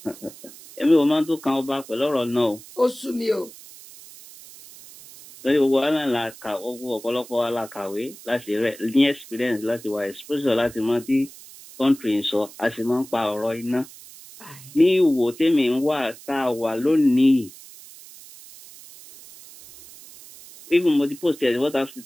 Èmi ò máa tó kan ọba pẹ̀lú ọ̀rọ̀ náà o. Ó sú mi o. Lórí gbogbo wa náà la kà ọ̀pọ̀lọpọ̀ wa la kàwé láti rẹ̀ ní experience láti wà exposure láti mọ tí country ń sọ a sì máa ń pa ọ̀rọ̀ iná. Ní Ìwò tèmi ń wà tá a wà lónìí. Even mo ti post ẹ̀ WhatsApp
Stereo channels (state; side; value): noise; right; hiss, 19 dB below the sound